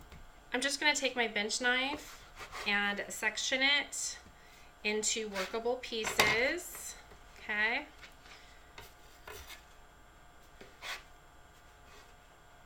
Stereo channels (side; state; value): both; identical; correlation 1.00